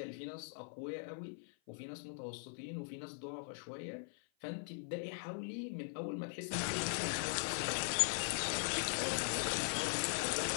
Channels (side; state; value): right; silent; 51 dB below the other